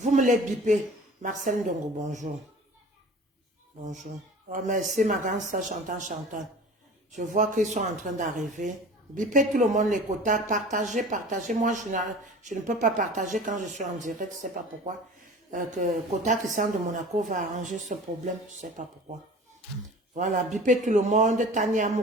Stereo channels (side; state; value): both; normal; correlation 0.41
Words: me les bipez. Marcel Ndongo, bonjour. Bonjour. Oh, merci, ma grande soeur Chantal. Je vois qu'ils sont en train d'arriver. Bipez tout le monde les quotas. Partagez. Moi, je ne peux pas partager quand je suis en direct. Je ne sais pas pourquoi. Quota Christian de Monaco va arranger ce problème. Je ne sais pas pourquoi. Voilà. Bipez tout le monde. Tania